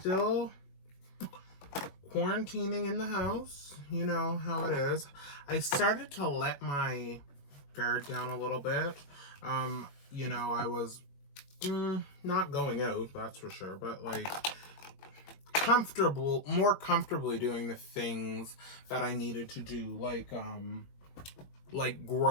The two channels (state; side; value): late; right; 21 ms